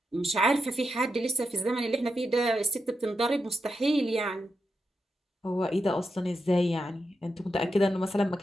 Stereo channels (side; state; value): both; normal; correlation 0.87